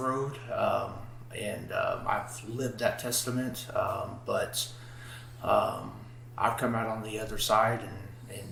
and I've lived that testament. But I've come out on the other side,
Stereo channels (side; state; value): both; identical; correlation 1.00